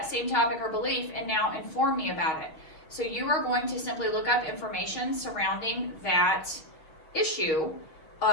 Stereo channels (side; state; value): right; late; 6.3 ms